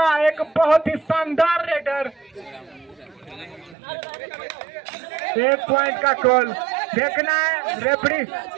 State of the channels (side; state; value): left; drops out; at 3.8 s